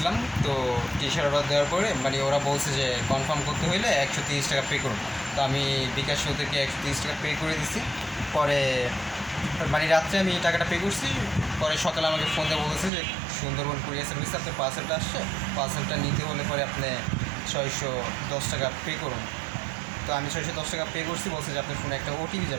তো T-shirt order দেওয়ার পরে মানে ওরা বলছে যে কনফার্ম করতে হইলে 130 টাকা পে করুন। তো আমি বিকাশ ওদেরকে 130 টাকা পে করে দিছি। পরে মানে রাত্রে আমি টাকাটা পে করছি। পরে সকালে আমাকে ফোন দিয়ে বলেছে যে সুন্দরবন কুরিয়ার সার্ভিসে আপনার পার্সেলটা আসছে, পার্সেলটা নিতে হলে পরে আপনি 610 টাকা পে করুন। তো আমি 610 টাকা পে করছি, বলছে যে আপনার ফোনে একটা ওটিপি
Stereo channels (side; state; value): left; drops out; at 12.9 s